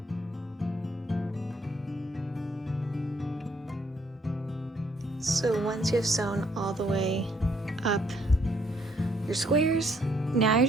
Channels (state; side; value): normal; both; correlation 0.68